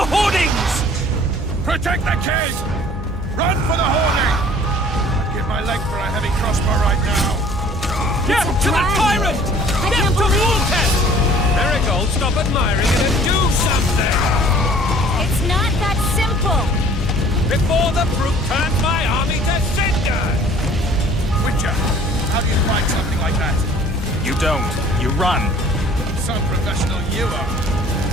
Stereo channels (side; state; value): both; normal; correlation 0.52